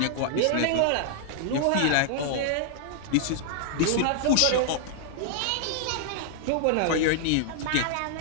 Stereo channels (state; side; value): different; both; correlation 0.00